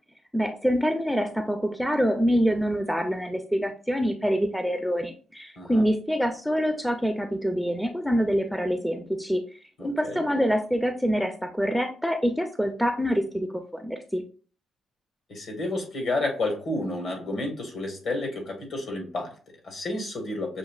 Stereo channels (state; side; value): normal; both; correlation 0.92